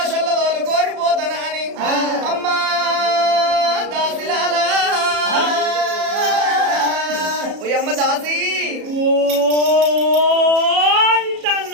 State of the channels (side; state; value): left; late; 34 ms